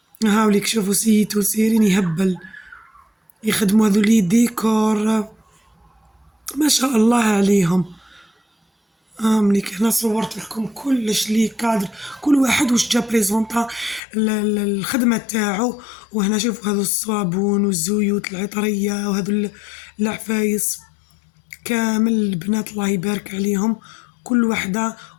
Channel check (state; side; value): drops out; right; at 14.0 s